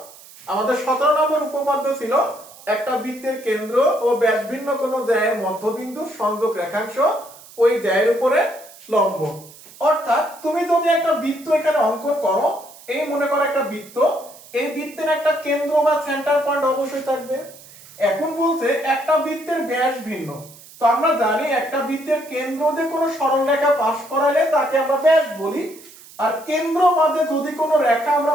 আমাদের 17 নম্বর উপপাদ্য ছিল একটা বৃত্তের কেন্দ্র ও ব্যাসভিন্ন কোন জ্যায়ের মধ্যবিন্দু সংযোগ রেখাংশ ওই জ্যায়ের উপরে লম্ব। অর্থাৎ তুমি যদি একটা বৃত্ত এখানে অঙ্কন করো, এই মনে করো একটা বৃত্ত, এই বৃত্তের একটা কেন্দ্র বা সেন্টার পয়েন্ট অবশ্যই থাকবে। এখন বলছে একটা বৃত্তের ব্যাস ভিন্ন, তো আমরা জানি একটা বৃত্তের কেন্দ্র দিয়ে কোনো সরল রেখা পাস করালে তাকে আমরা ব্যাস বলি, আর কেন্দ্র মাঝে যদি কোনো রেখা আমরা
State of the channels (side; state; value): right; noise; hiss, 21 dB below the sound